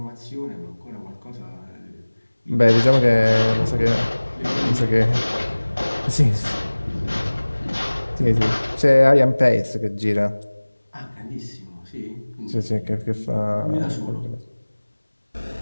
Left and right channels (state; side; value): inverted; both; correlation -1.00